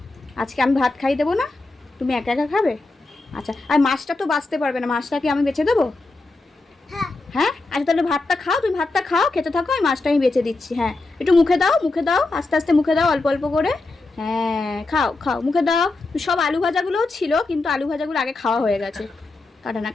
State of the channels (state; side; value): quieter; right; 3.3 dB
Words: আজকে আমি ভাত খাই দেবো না, তুমি একা একা খাবে? আচ্ছা, আর মাছটা তো বাঁচতে পারবে না, মাছটা কি আমি বেছে দেবো? হ্যাঁ আচ্ছা, তাহলে ভাতটা খাও, তুমি ভাতটা খাও, খেতে থাকো, আমি মাছটা আমি বেছে দিচ্ছি। হ্যাঁ, একটু মুখে দাও, মুখে দাও, আস্তে আস্তে মুখে দাও, অল্প অল্প করে। হ্যাঁ খাও খাও, মুখে দাও। সব আলু ভাজাগুলোও ছিল, কিন্তু আলু ভাজাগুলো আগে খাওয়া হয়ে গেছে। কাটা না,